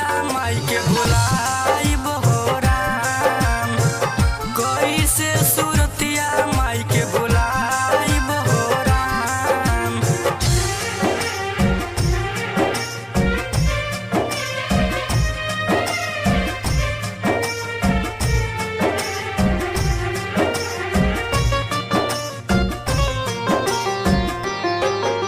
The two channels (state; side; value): identical; both; correlation 1.00